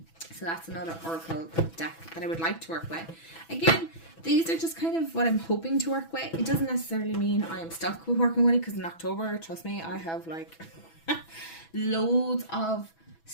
So that's another oracle deck that I would like to work with. Again, these are just kind of what I'm hoping to work with. It doesn't necessarily mean I am stuck with working with it, because in October, trust me, I have like loads of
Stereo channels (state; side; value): late; right; 6.1 ms